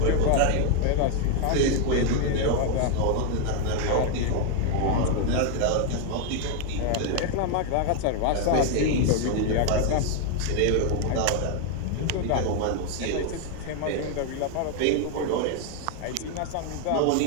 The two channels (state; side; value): different; both; correlation 0.01